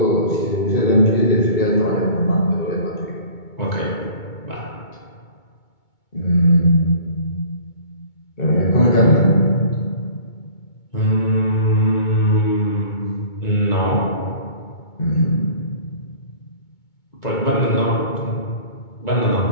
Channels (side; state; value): right; late; 2.2 ms